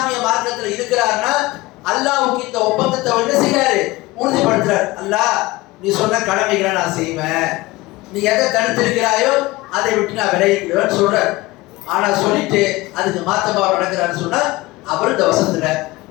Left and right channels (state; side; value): quieter; right; 20.1 dB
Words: மார்க்கத்தில் இருக்கிறாருன்னா, அல்லாஹ்வுக்கு இந்த ஒப்பந்தத்தை என்ன செய்யறாரு? உறுதிப்படுத்துறாரு. அல்லாஹ் நீ சொன்ன கடமைகளை நான் செய்வேன், நீ எதை தடுத்திருக்கிறாயோ அதை விட்டு நான் விலகிக்கிறேன்னு சொல்றாரு. ஆனா சொல்லிட்டு அதுக்கு மாத்தமா நடக்கிறான்னு சொன்னா அவர் இந்த வசனத்துல